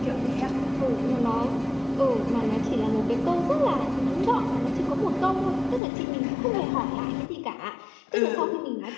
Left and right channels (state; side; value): drops out; right; at 5.8 s